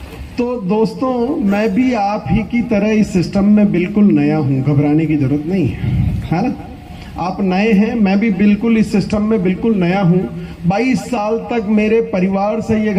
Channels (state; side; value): identical; both; correlation 1.00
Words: तो दोस्तों मैं भी आप ही की तरह इस सिस्टम में बिल्कुल नया हूं, घबराने की जरूरत नहीं है ना। आप नए हैं, मैं भी बिल्कुल इस सिस्टम में बिल्कुल नया हूं। 22 साल तक मेरे परिवार से ये